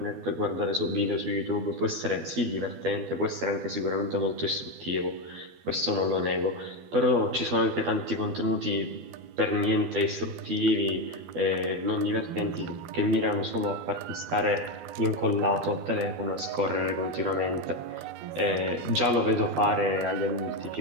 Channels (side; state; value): left; late; 12 ms